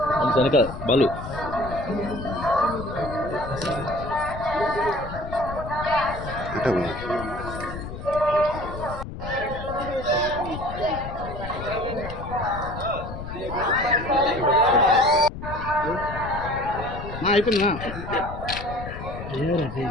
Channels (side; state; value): left; noise; rumble, 9 dB below the sound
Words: వెనక బాలు అయిపోయిందా